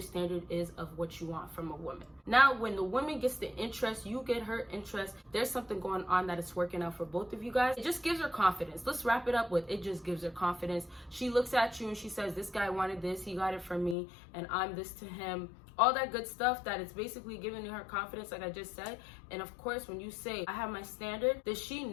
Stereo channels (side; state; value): right; drops out; at 14.0 s